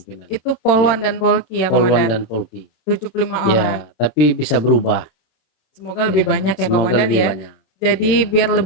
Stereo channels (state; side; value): late; right; 27 ms